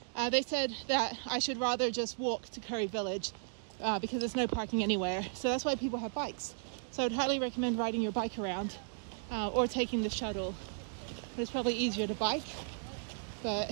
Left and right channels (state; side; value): silent; left; digital silence